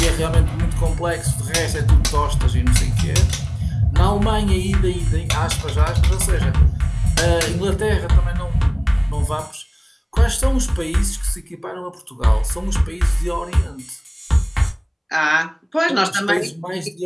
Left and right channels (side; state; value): both; identical; correlation 1.00